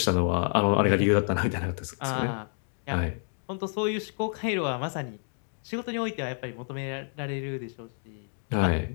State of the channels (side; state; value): right; silent; 59 dB below the other